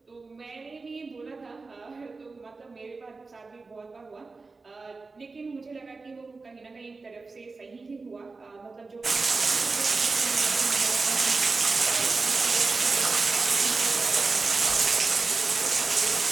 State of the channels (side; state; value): left; quieter; 4.0 dB